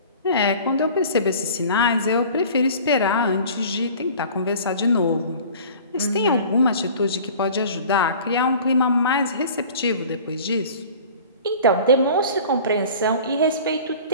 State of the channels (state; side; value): inverted; both; correlation -0.44